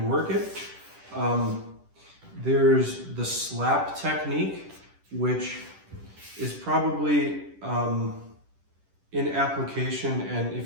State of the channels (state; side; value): late; left; 10 ms